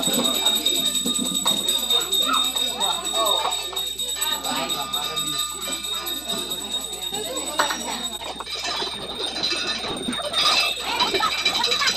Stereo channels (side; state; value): right; noise; hum, 21 dB below the sound